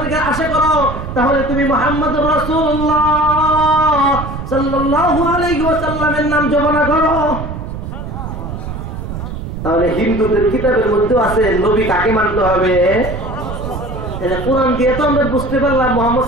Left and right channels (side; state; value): right; noise; rumble, 7 dB below the sound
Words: আশা করো তাহলে তুমি মুহাম্মদুর রাসূলুল্লাহ সাল্লাল্লাহু আলাইহি ওয়াসাল্লামের নাম জপনা করো। তাহলে হিন্দুদের কিতাবের মধ্যে আছে নবী কাকে মানতে হবে। কোরআন দিয়ে তো আমরা বুঝতে পারলাম মুহাম্মদ